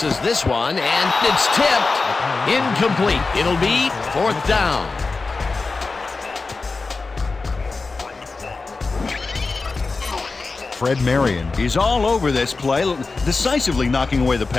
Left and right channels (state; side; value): quieter; right; 4.0 dB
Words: this one, and it's tipped. Incomplete. It'll be 4th down. Fred Marion is all over this play, decisively knocking away the